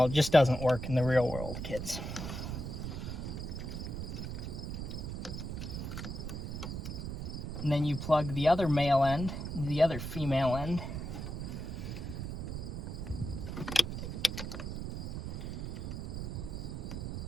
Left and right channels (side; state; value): right; noise; rumble, 5 dB below the sound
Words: It just doesn't work in the real world, kids. And then you plug the other male end into the other female end.